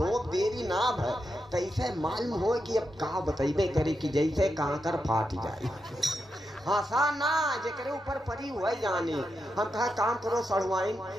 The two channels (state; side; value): normal; both; correlation 0.86